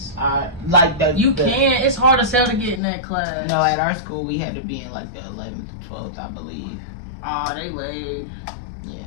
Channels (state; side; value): drops out; right; at 2.8 s